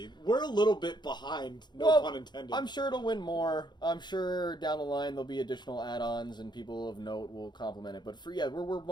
We're a little bit behind, pun intended. I'm sure it'll win more. I'm sure down the line there'll be additional add-ons and people of note will compliment it. But we're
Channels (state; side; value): late; right; 0.21 ms